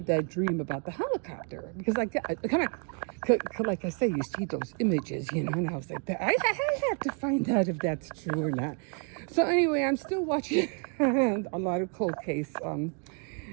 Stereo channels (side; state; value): left; quieter; 38.1 dB